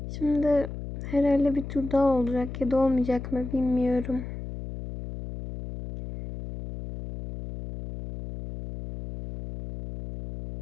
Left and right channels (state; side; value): noise; left; hum, 9 dB below the sound